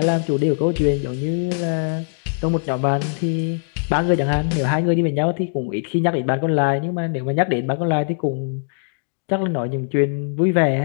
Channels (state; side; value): silent; right; digital silence